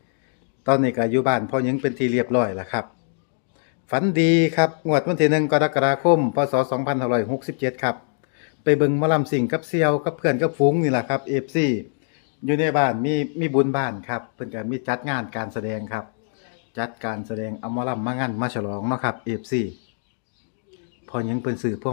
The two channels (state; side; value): silent; right; 63 dB below the other